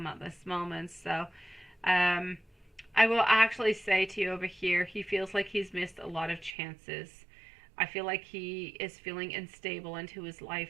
at this moment. So I will actually say to you over here, he feels like he's missed a lot of chances. I feel like he is feeling unstable into his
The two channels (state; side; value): drops out; left; at 6.6 s